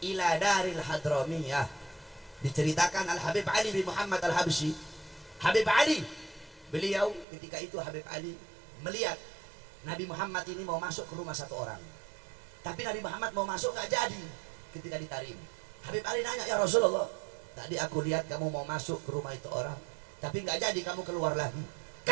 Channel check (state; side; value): drops out; left; at 7.2 s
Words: ila Daril Hadramiyah diceritakan Al-Habib Ali bin Muhammad Al-Habsyi. Habib Ali, beliau ketika itu Habib Ali melihat Nabi Muhammad ini mau masuk ke rumah satu orang, tapi Nabi Muhammad mau masuk nggak jadi. Ketika ditarik, Habib Ali nanya, ya Rasulullah, tadi aku lihat kamu mau masuk ke rumah itu orang, tapi nggak jadi, kamu keluar lagi.